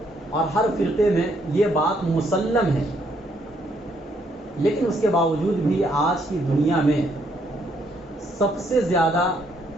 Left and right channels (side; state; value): both; normal; correlation 0.71